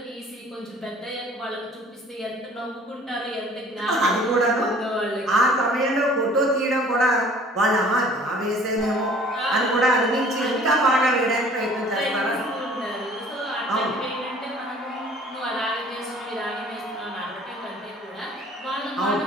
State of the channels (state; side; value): normal; both; correlation 0.52